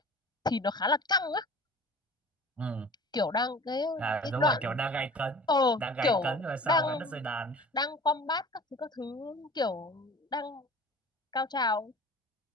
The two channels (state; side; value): normal; both; correlation 0.43